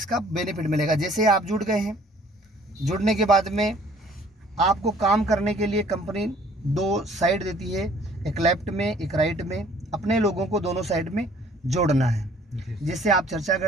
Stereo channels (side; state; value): both; normal; correlation 0.56